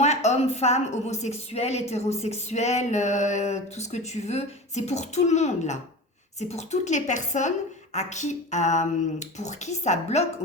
hommes, femmes, homosexuels, hétérosexuels, tout ce que tu veux. C'est pour tout le monde, là. C'est pour toutes les personnes pour qui ça bloque au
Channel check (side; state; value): both; normal; correlation 0.31